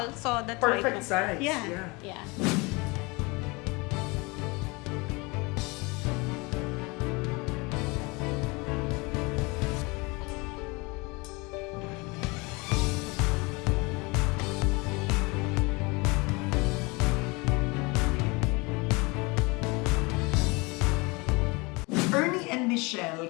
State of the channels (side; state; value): right; quieter; 26.4 dB